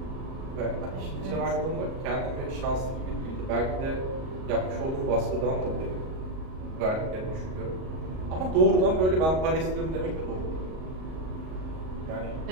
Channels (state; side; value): late; left; 38 ms